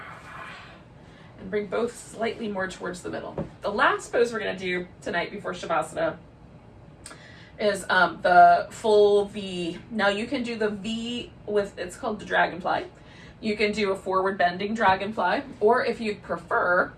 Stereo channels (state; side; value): identical; both; correlation 1.00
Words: and bring both slightly more towards the middle. The last pose we're gonna do tonight before Shavasana is the full V. Now you can do the V with, it's called the dragonfly. You can do a forward bending dragonfly, or if you prefer,